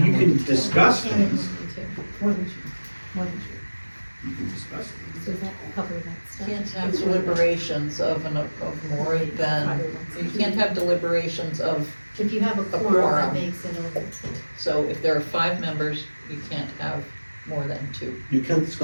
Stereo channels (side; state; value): both; inverted; correlation -1.00